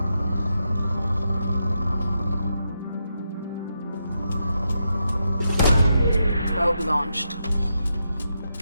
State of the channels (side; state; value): both; inverted; correlation -0.84